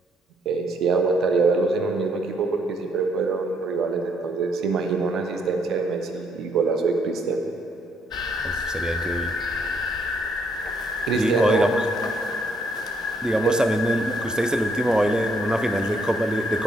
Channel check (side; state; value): both; normal; correlation 0.70